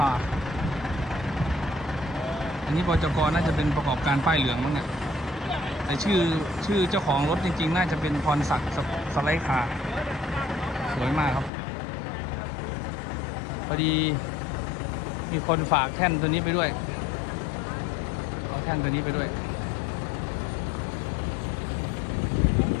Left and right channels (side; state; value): right; drops out; at 11.5 s